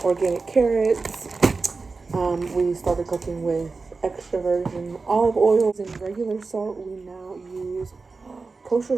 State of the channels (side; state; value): left; quieter; 4.1 dB